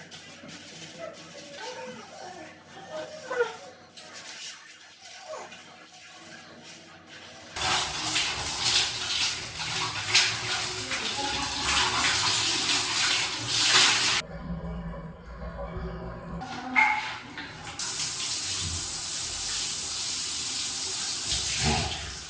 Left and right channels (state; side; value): identical; both; correlation 1.00